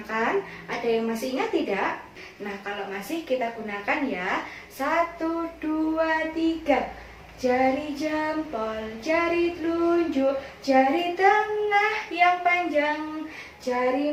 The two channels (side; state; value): both; identical; correlation 1.00